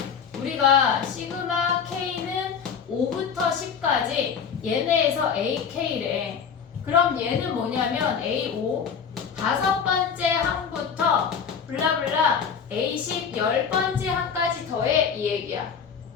우리가 시그마 K는 5부터 10까지 얘네에서 AK래. 그럼 얘는 뭐냐면 A5 5번째 항부터 블라블라 A10 10번째 항까지 더해, 이 얘기야.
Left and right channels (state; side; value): quieter; right; 6.8 dB